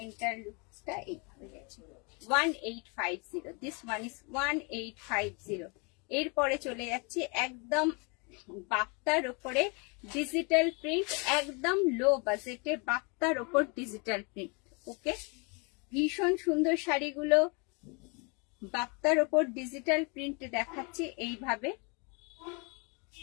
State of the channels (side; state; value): right; quieter; 32.6 dB